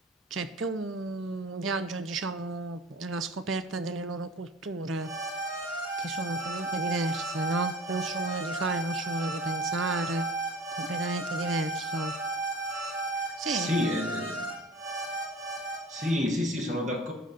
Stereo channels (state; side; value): normal; both; correlation 0.42